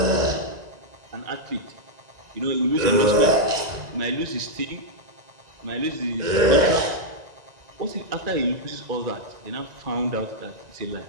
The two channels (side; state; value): left; late; 1.9 ms